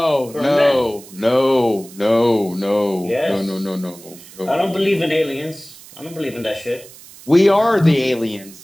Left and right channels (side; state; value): right; noise; hiss, 20 dB below the sound